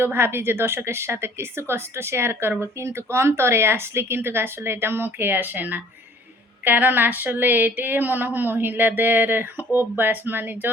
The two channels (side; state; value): both; normal; correlation 0.54